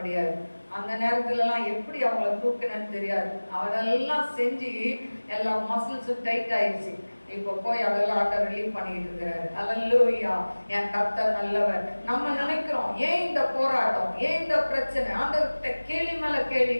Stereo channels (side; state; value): both; inverted; correlation -1.00